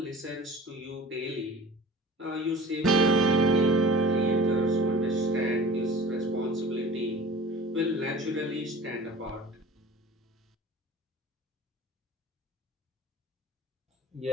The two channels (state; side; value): normal; both; correlation 0.42